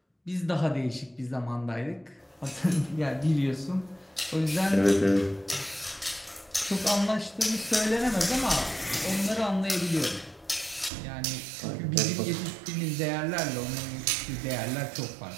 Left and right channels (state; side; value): drops out; left; at 10.9 s